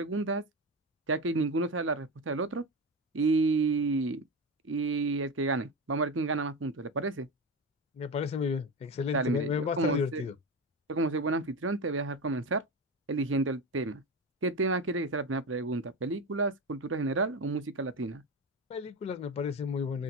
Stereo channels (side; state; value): both; normal; correlation 0.20